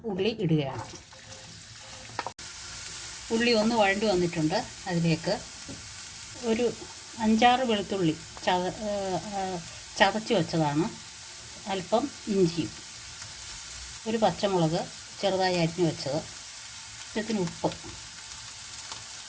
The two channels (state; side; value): identical; both; correlation 1.00